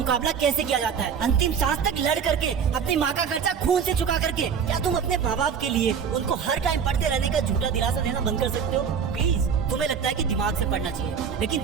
कैसे किया जाता है। अंतिम सांस तक लड़ करके, अपनी माँ का खर्चा खून से चुका करके। क्या तुम अपने माँ बाप के लिए उनको हर टाइम पढ़ते रहने का झूठा दिलासा देना बंद कर सकते हो? प्लीज, तुम्हें लगता है कि दिमाग से पढ़ना चाहिए, लेकिन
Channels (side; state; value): left; quieter; 7.0 dB